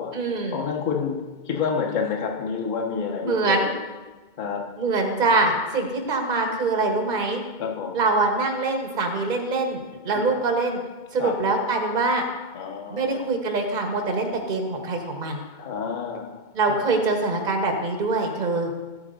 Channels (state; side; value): late; left; 2.2 ms